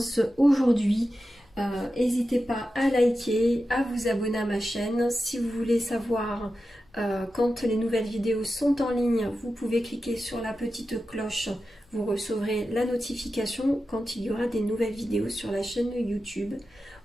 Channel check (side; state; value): both; normal; correlation 0.92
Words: aujourd'hui. N'hésitez pas à liker, à vous abonner à ma chaîne. Si vous voulez savoir quand les nouvelles vidéos sont en ligne, vous pouvez cliquer sur la petite cloche. Vous recevrez la notification quand il y aura des nouvelles vidéos sur la chaîne YouTube.